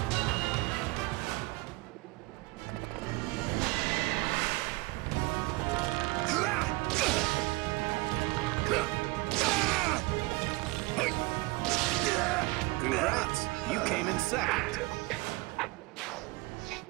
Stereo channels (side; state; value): left; quieter; 23.1 dB